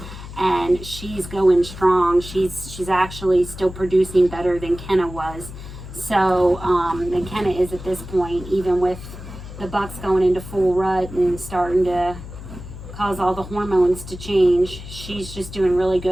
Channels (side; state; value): left; noise; hum, 12 dB below the sound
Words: and she's going strong. She's actually still producing better than Kenna was. So, and Kenna is at this point, even with the bucks going into full rut and starting to cause all the hormones to change, she's just doing really